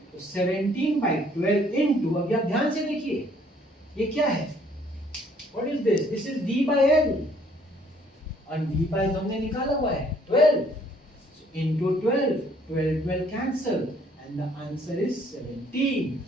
तो 17/12 इनटू, अब आप ध्यान से देखिए ये क्या है, what is this, this is V/L, और V/12 हमने निकाला हुआ है 12, so into 12 cancel and the answer is 17,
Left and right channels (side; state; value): both; normal; correlation 0.62